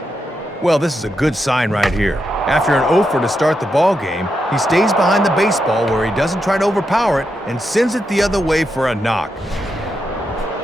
Well, this is a good sign right here. After an 0-for to start the ball game, he stays behind the baseball where he doesn't try to overpower it and sends it the other way for a knock.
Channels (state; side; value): normal; both; correlation 0.85